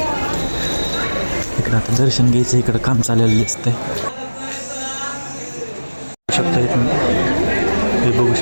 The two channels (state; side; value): inverted; both; correlation -1.00